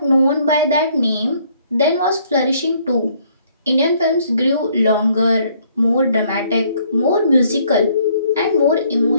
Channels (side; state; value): both; inverted; correlation -0.64